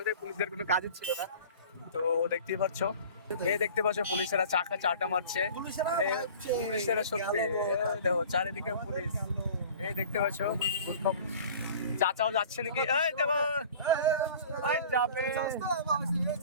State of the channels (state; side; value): inverted; both; correlation -0.44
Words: ওদের পুলিশদের কোনো কাজই ছিল না। তো দেখতেই পাচ্ছ, এই দেখতে পাচ্ছ পুলিশেরা চাটা মারছে, পুলিশেরা সত্যি দেখো চারিদিকে পুলিশ। এই দেখতে পাচ্ছ চাচাও যাচ্ছে নাকি, এই দেখো যাবে